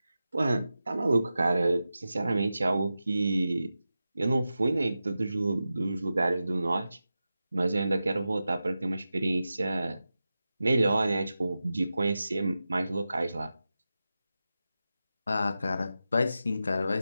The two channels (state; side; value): inverted; both; correlation -0.92